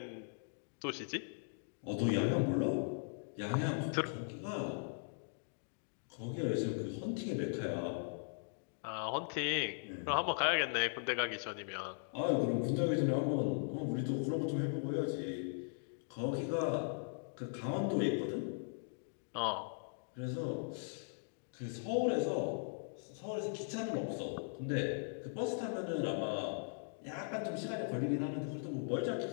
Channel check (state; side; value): silent; right; digital silence